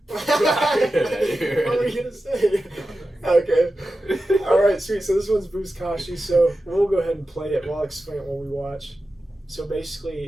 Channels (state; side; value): normal; both; correlation 0.92